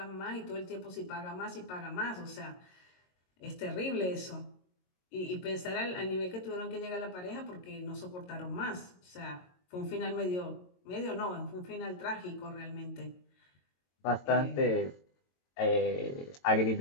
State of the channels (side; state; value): right; late; 22 ms